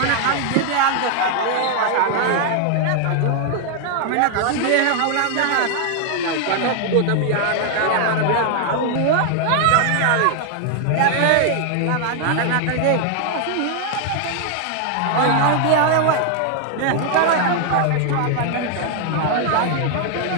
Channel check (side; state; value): both; different; correlation 0.00